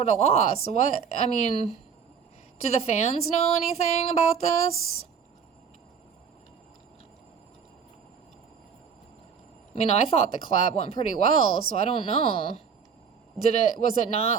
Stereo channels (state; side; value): quieter; left; 6.6 dB